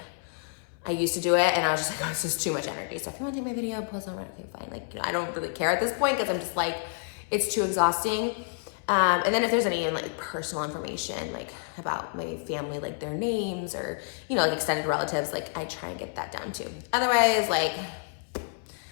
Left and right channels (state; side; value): silent; right; 59 dB below the other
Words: I used to do it, and I was just like, oh, this is too much energy. So if you want to take my video, post on Reddit, okay, fine. Like I don't really care at this point, because I'm just like, it's too exhausting. And then if there's any like personal information like about my family, like their names or like extended relatives, like I try and get that down too. Otherwise, like